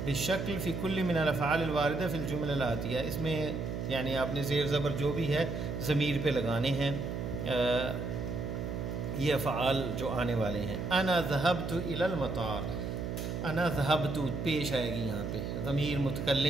بالشکل فی کل من الافعال الواردہ فی الجمل الآتیہ، اس میں یعنی آپ نے زیر زبر جو بھی ہے ضمیر پہ لگانے ہیں، یہ افعال جو آنے والے ہیں۔ انا ذهبت الی المطار، انا ذهبت پیش آئے گی یہاں پہ، ضمیر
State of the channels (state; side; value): noise; right; hum, 4 dB below the sound